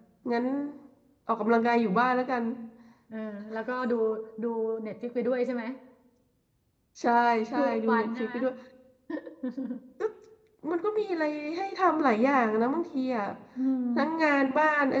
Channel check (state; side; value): identical; both; correlation 1.00